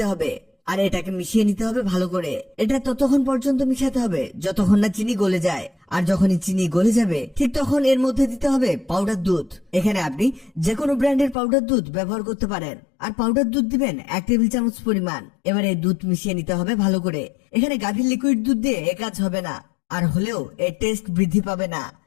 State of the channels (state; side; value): drops out; right; at 11.4 s